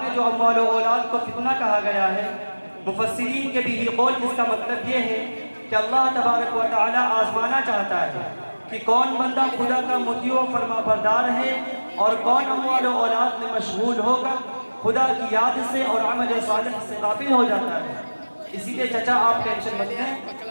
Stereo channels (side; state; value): both; inverted; correlation -1.00